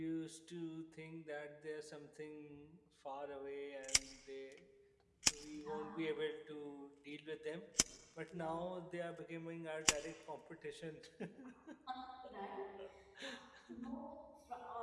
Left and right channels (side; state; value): both; identical; correlation 1.00